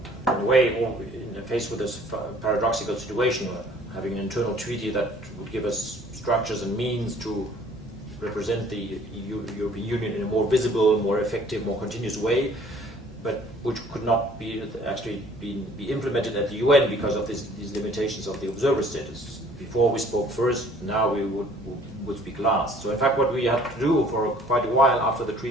in a way faced with this paradoxical situation, having an internal treaty that would give us structures and means to represent the European Union in a more visible, more effective, more continuous way, but which could not be implemented at the UN because of these limitations of the observer status. Before we spoke first, now we would speak last. So in fact what we had to do for quite a while after the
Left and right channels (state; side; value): normal; both; correlation 0.55